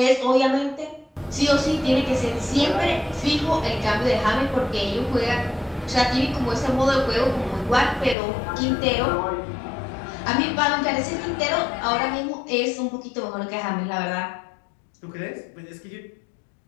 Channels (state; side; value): drops out; right; at 8.2 s